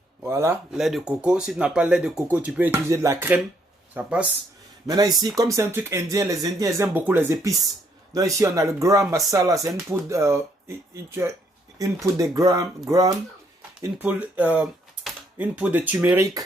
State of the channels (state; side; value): normal; both; correlation 0.70